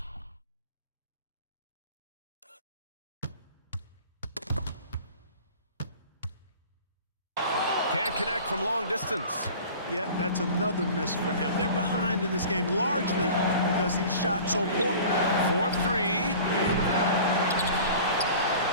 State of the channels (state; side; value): inverted; both; correlation -0.42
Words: Can't connect from long distance. Yeah, that's another miss for him. They're behind in this game largely because he shot so poorly. 4-3.